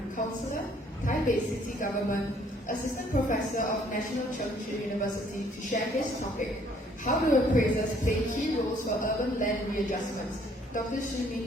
Counselor, Taipei City Government, Assistant Professor of National Cheng Chi University, to share his topic, How do appraisers play key roles for urban land readjustments? Dr.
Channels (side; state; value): both; normal; correlation 0.62